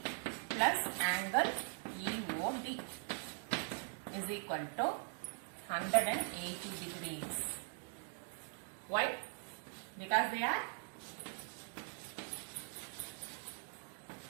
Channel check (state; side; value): silent; left; 50 dB below the other